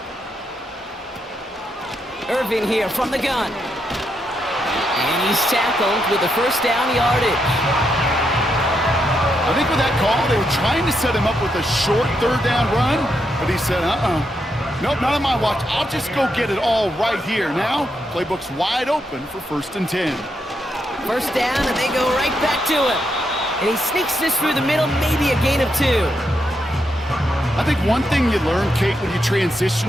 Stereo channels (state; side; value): normal; both; correlation 0.81